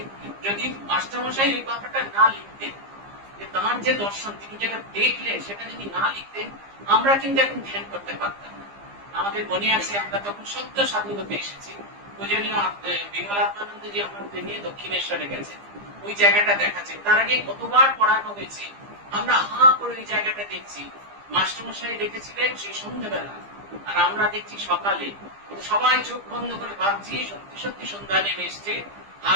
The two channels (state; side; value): late; left; 15 ms